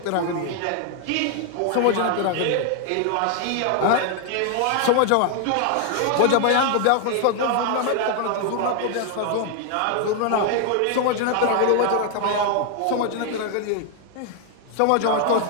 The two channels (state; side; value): different; both; correlation 0.00